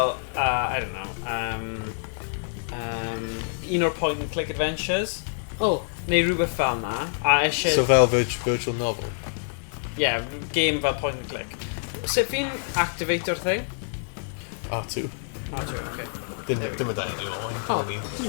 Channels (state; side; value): silent; right; digital silence